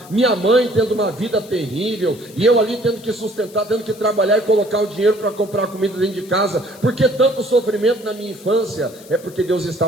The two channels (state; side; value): noise; left; hiss, 22 dB below the sound